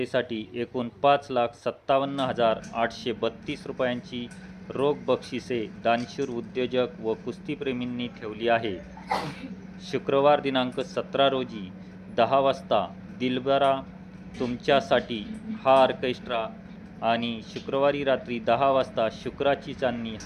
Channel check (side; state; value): both; identical; correlation 1.00